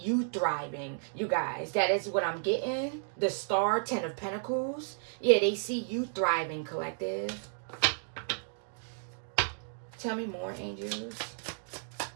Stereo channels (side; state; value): left; silent; digital silence